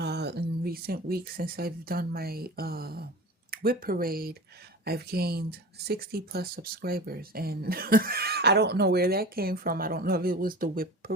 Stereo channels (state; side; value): normal; both; correlation 0.34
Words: recent weeks, since I've done my WIP parade, I've gained 60 plus subscribers, and I don't know where that came from. I don't know if it was the WIP